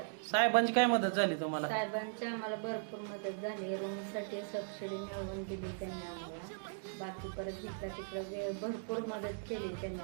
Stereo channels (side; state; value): left; silent; digital silence